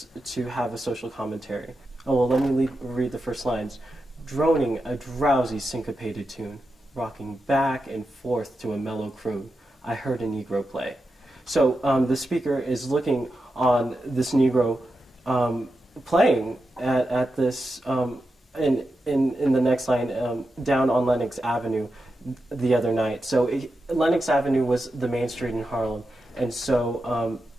to have a social commentary. Oh, well, let me read the first lines. Droning a drowsy syncopated tune, rocking back and forth to a mellow croon, I heard a Negro play. So the speaker is looking on this Negro playing at this, in the next line, down on Lenox Avenue the other night. So Lenox Avenue was the main street in Harlem, and so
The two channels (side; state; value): both; normal; correlation 0.89